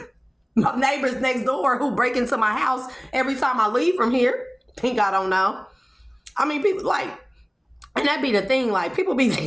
My neighbors next door who break into my house every time I leave from here. Think I don't know. I mean, people like, and that be the thing, like people be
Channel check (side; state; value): both; identical; correlation 1.00